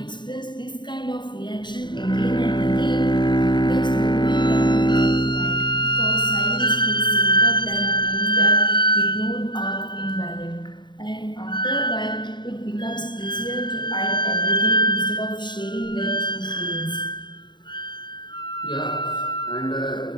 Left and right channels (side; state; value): right; late; 0.22 ms